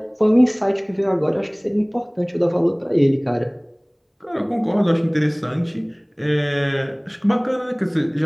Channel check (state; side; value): identical; both; correlation 1.00